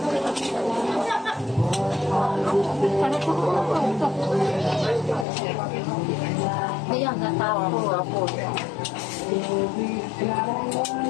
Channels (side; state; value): right; drops out; at 5.2 s